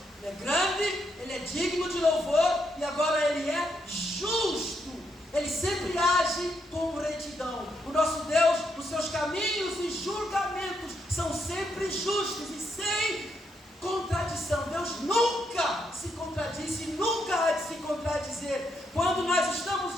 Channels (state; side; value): normal; both; correlation 0.78